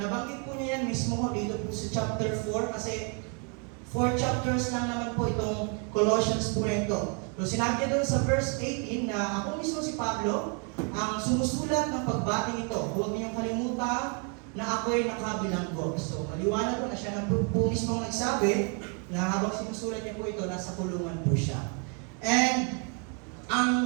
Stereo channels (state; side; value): quieter; left; 38.4 dB